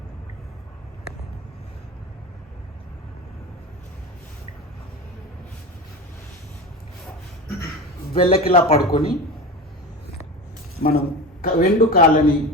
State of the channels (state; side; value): normal; both; correlation 0.27